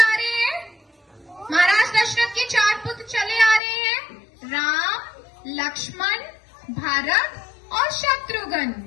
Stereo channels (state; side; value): drops out; right; at 3.6 s